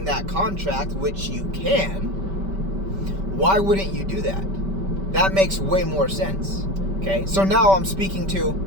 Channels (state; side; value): late; left; 5.2 ms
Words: that contract, which you can, why wouldn't you do that? That makes way more sense. Okay, so now I'm speaking